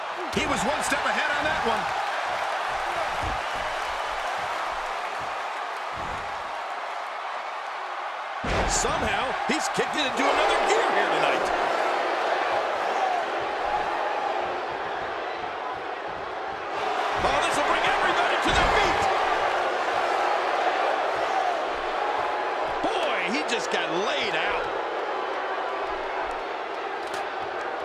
He was one step ahead on that one. Somehow, he's kicked it into another gear here tonight. Oh, this will bring everybody to their feet. Boy, he just got laid out.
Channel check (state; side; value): identical; both; correlation 1.00